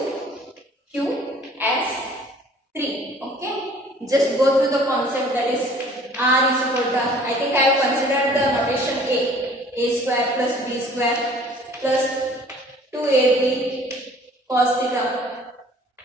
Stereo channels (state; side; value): normal; both; correlation 0.52